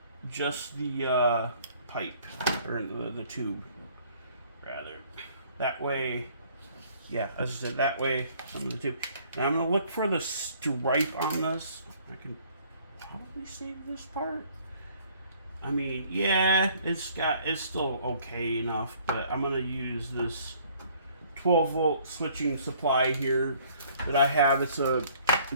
pipe, or the tube, rather. That way, yeah, as I said, that way, some of the tube. Now I'm going to look for the stripe on this. I can probably save this part. I mean, yeah, it's still okay enough, but I'm gonna use this 12-volt switching supply here that I have. It's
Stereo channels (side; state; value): both; inverted; correlation -0.59